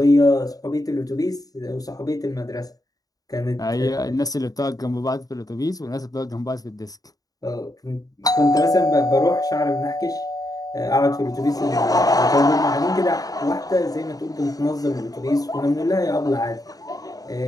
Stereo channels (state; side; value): late; right; 0.18 ms